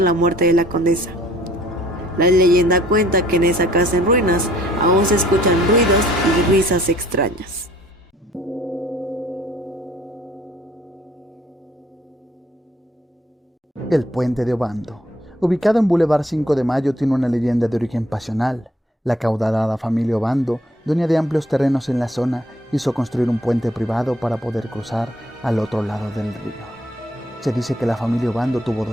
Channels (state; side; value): normal; both; correlation 0.60